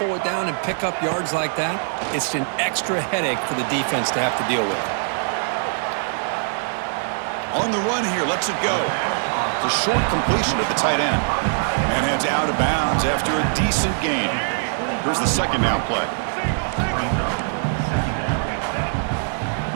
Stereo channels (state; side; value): silent; left; digital silence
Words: it down and pick up yards like that, it's an extra headache for the defense to have to deal with. On the run here, lets it go. It's a short completion at the tight end. And heads out of bounds after a decent gain. Here's the second down play.